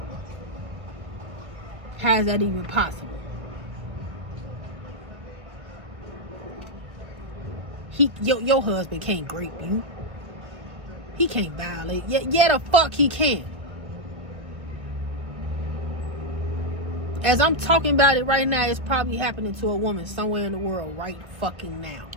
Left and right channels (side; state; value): left; late; 1.3 ms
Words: How is that even possible? Your husband can't rape you. He can't violate. Yeah, the fuck he can. As I'm talking about it right now, it's probably happening to a woman somewhere in the world right fucking now.